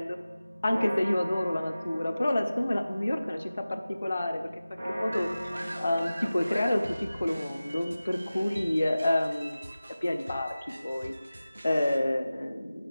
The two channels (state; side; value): inverted; both; correlation -0.96